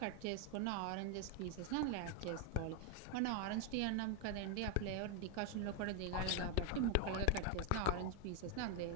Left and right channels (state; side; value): different; both; correlation 0.01